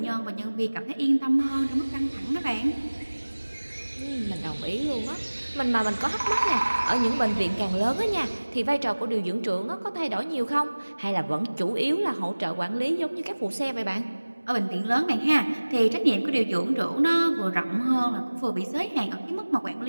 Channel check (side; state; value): both; inverted; correlation -1.00